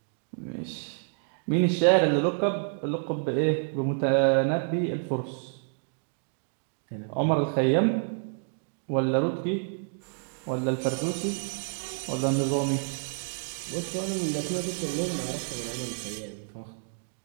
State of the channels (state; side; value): silent; left; digital silence